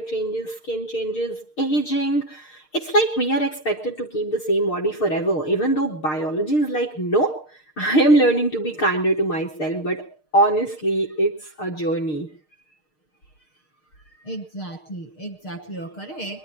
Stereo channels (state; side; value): late; right; 6.5 ms